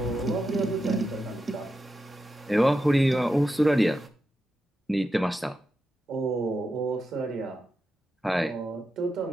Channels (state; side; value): normal; both; correlation 0.89